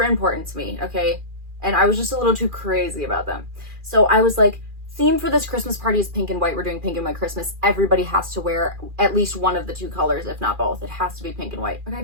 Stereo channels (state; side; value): late; left; 2.4 ms